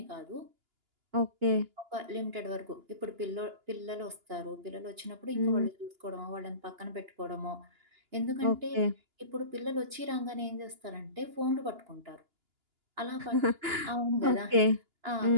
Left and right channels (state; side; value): late; left; 2.9 ms